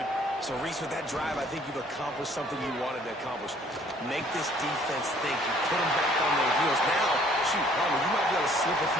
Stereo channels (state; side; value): normal; both; correlation 0.59